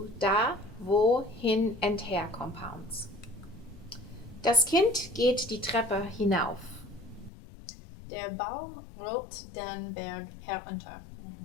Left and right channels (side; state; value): right; drops out; at 7.3 s